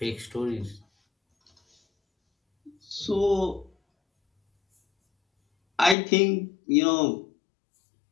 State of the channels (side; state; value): right; drops out; at 6.0 s